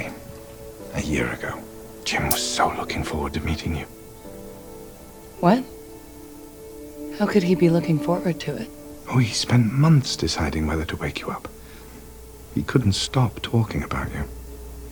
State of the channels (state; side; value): identical; both; correlation 1.00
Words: a year ago. Jim was so looking forward to meeting you. What? How could he be looking forward to it? Oh, he spent months deciding whether to wake you up. He couldn't stop talking about you.